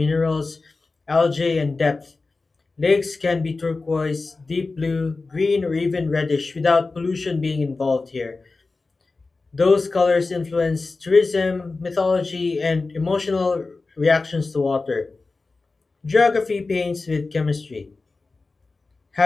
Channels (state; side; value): quieter; right; 3.7 dB